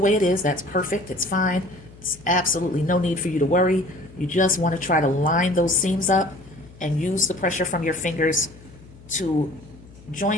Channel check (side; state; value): left; noise; hum, 22 dB below the sound